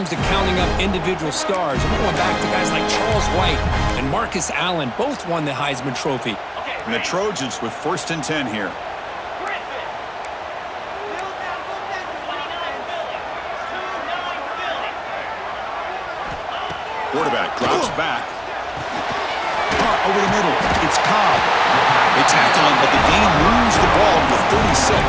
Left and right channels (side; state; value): both; identical; correlation 1.00